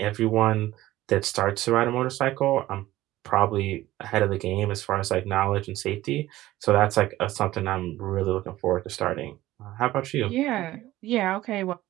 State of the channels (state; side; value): quieter; left; 15.9 dB